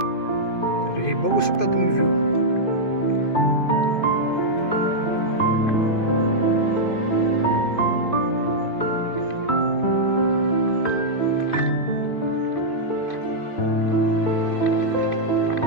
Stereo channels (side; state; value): right; late; 2.5 ms